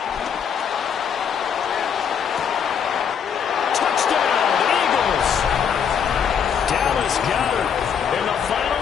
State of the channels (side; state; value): right; quieter; 7.5 dB